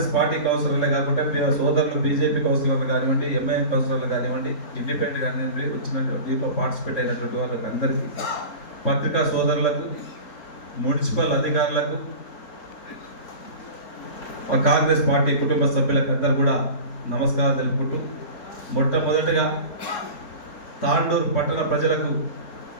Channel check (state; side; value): late; right; 3.6 ms